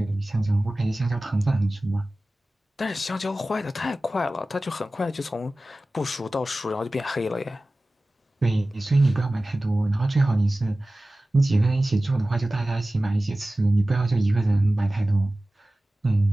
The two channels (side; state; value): both; normal; correlation 0.96